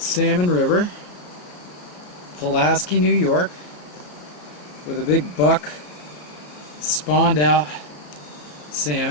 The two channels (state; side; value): late; right; 34 ms